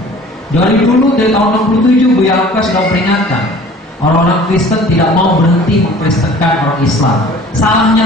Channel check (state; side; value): normal; both; correlation 0.47